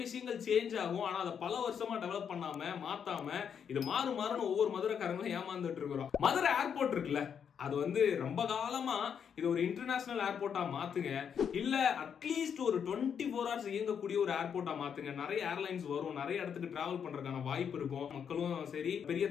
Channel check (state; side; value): quieter; right; 7.6 dB